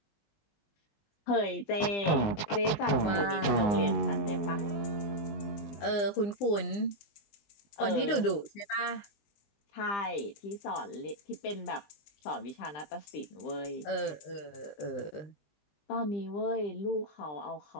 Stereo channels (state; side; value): late; right; 20 ms